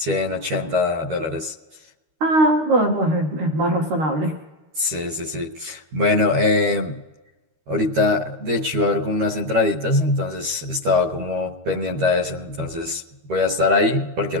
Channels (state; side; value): late; left; 13 ms